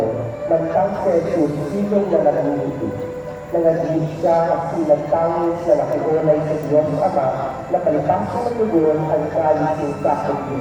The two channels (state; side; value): identical; both; correlation 1.00